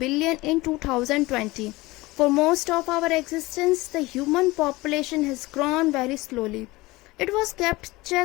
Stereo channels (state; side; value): quieter; right; 20.8 dB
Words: in 2020. For most of our existence, the human population has grown very slowly. It was kept